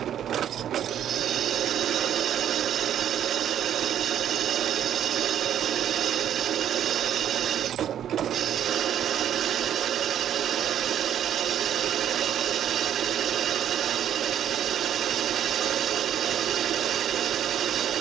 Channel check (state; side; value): quieter; left; 10.2 dB